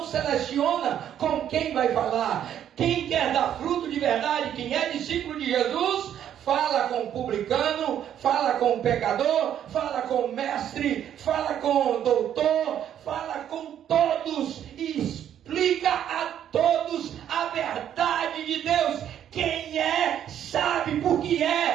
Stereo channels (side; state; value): left; quieter; 10.1 dB